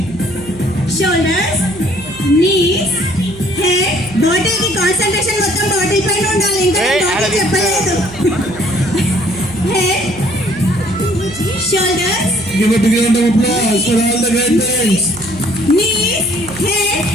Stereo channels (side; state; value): right; noise; hum, 18 dB below the sound